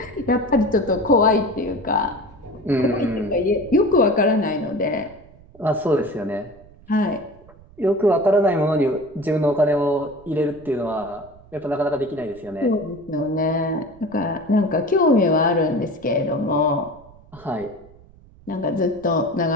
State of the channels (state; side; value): noise; right; rumble, 24 dB below the sound